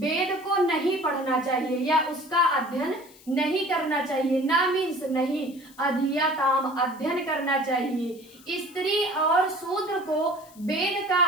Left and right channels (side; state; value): left; noise; hiss, 24 dB below the sound